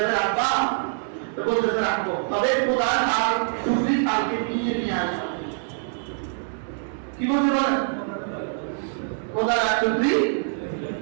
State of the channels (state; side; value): silent; left; 62 dB below the other